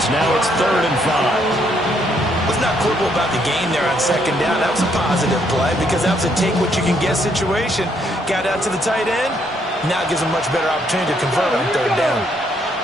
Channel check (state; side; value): normal; both; correlation 0.71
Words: Now it's 3rd and 5. Was not quibble about the gain there on 2nd down. That was a positive play because that was a take-what-you-can-get situation. Got out to the tight end. Now gives him a much better opportunity to convert on 3rd down.